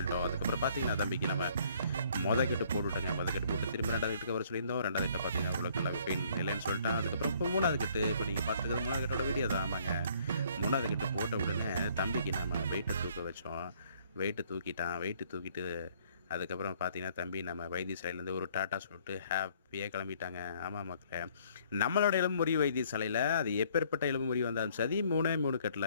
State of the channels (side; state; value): both; inverted; correlation -0.62